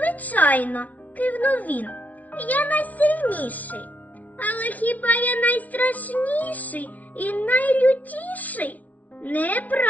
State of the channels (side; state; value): right; late; 0.072 ms